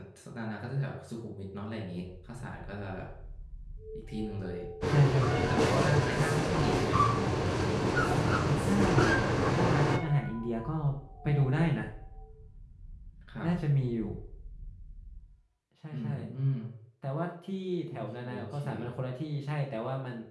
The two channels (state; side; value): identical; both; correlation 1.00